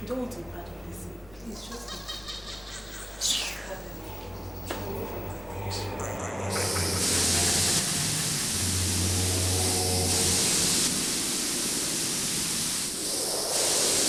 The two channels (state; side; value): noise; left; rumble, 23 dB below the sound